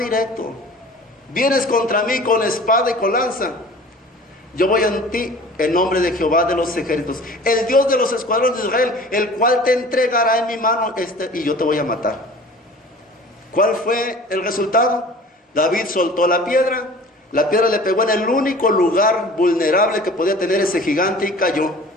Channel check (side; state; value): both; normal; correlation 0.44